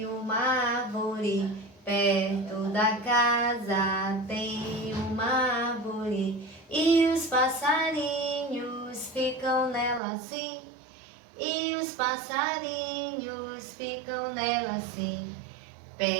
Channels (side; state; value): left; drops out; at 10.0 s